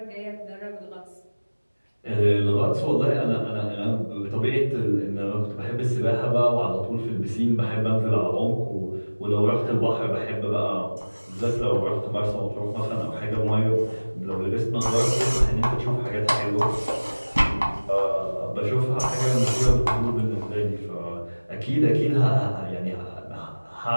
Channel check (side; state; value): both; inverted; correlation -1.00